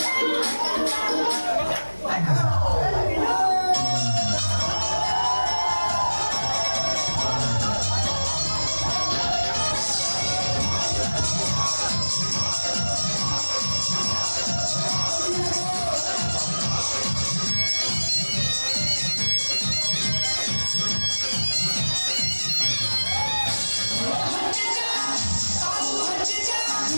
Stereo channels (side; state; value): both; inverted; correlation -1.00